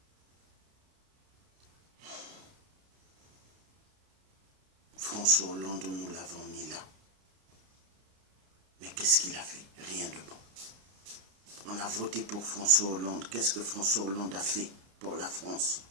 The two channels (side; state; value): left; late; 31 ms